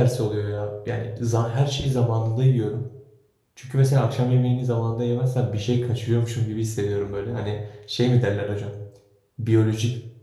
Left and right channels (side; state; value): both; identical; correlation 1.00